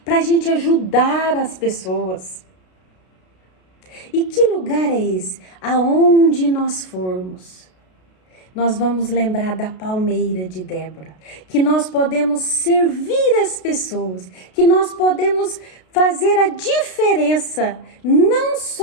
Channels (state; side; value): late; right; 32 ms